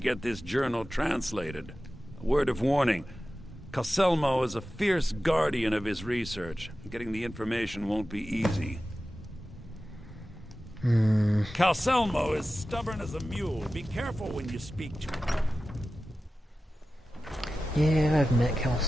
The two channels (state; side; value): normal; both; correlation 0.94